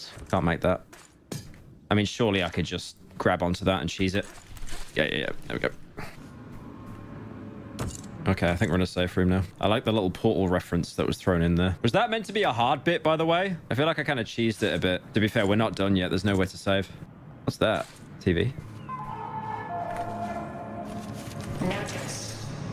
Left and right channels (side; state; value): both; identical; correlation 1.00